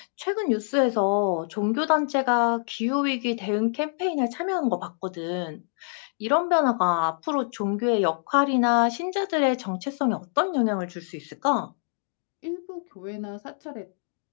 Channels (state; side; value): silent; right; digital silence